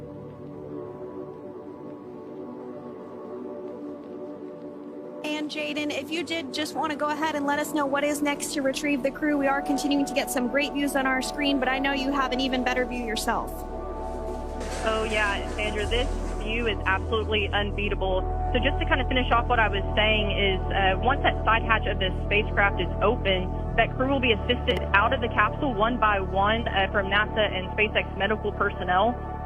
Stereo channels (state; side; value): identical; both; correlation 1.00